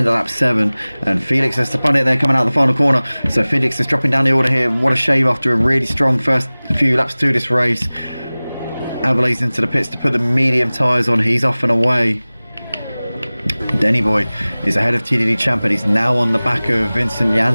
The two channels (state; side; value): inverted; both; correlation -0.99